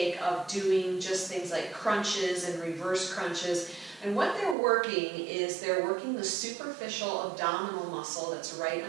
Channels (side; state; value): left; drops out; at 4.5 s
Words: of doing just things like crunches and reverse crunches. And what they're working is they're working the superficial abdominal muscle that's right